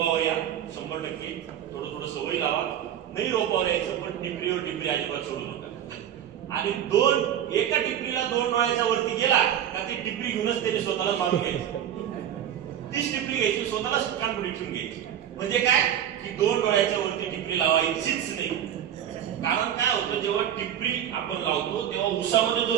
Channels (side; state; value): left; quieter; 10.1 dB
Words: या 100%, थोडं थोडं सवय लावा. नाही रोपावर यायचं, पण टिपरीवर टिपरी अजिबात सोडू नका. आणि एका टिपरीला 2 डोळ्याच्या वरती गेला का ती टिपरी घेऊनच त्याने स्वतःला मारून घ्यायची. तीच टिपरी घ्यायची, स्वतःला कानपुडी ठेवून घ्यायची. म्हणजे काय की 2 डोळ्याच्या वरती टिपरी लावायचीच नाही. कारण काय होतं, जेव्हा टिपरी आपण लावतो तेव्हा उसामध्ये